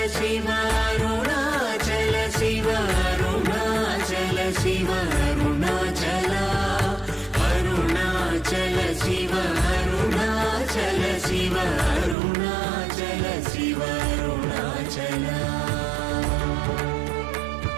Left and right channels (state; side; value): drops out; left; at 12.2 s